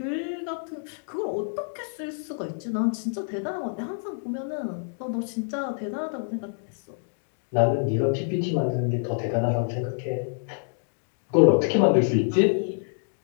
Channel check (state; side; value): silent; right; digital silence